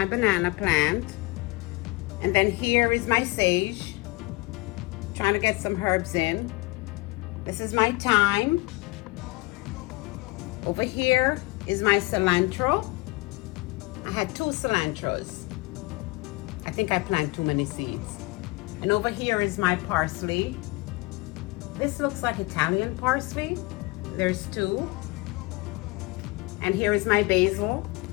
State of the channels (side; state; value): right; quieter; 23.3 dB